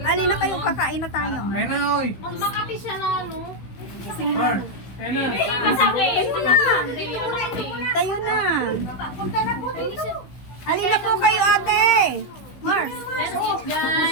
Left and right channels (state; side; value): late; right; 16 ms